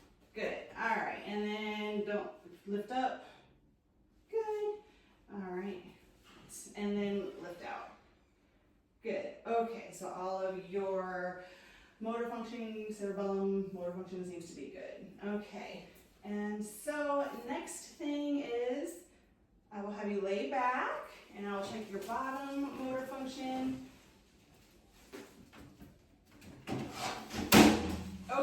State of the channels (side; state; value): both; identical; correlation 1.00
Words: Good, all right, and then don't lift up, good, all right, and then lift out. Good, okay, so all of your motor functioning, cerebellum, motor function seems to be good. Okay, and so next thing is I will have you lay back and I'll check your bottom motor function.